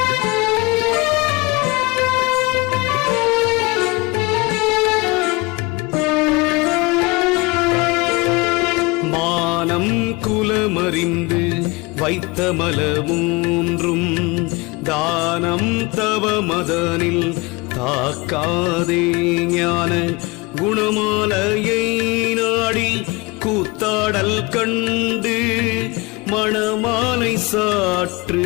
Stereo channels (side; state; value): right; quieter; 25.0 dB